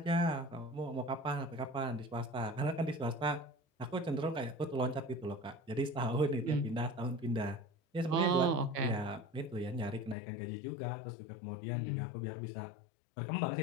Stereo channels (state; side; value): drops out; right; at 10.2 s